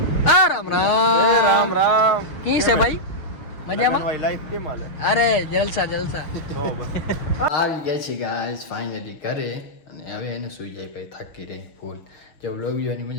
આ રામ રામ રામ. કી છે ભાઈ? મજામાં? ભાઈ લાઈફ કેમ હાલે? અરે જલસા જલસા. તો બસ આવી ગયા છે ગાઈસ ફાઇનલી ઘરે, અને હવે એને સુઈ જાય ભાઈ, થાકી રહી ફૂલ. જો વ્લોગ જોવાની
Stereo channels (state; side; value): late; right; 6.5 ms